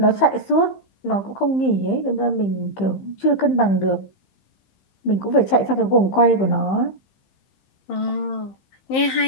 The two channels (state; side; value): late; right; 15 ms